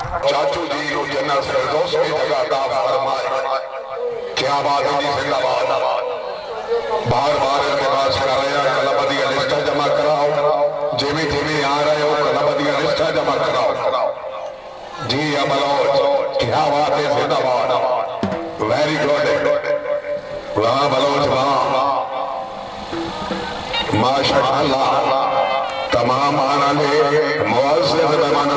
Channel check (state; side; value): identical; both; correlation 1.00